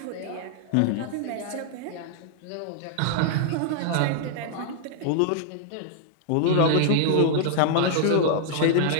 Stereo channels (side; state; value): both; different; correlation -0.01